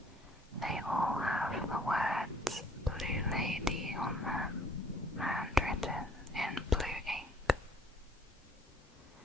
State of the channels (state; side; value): normal; both; correlation 0.60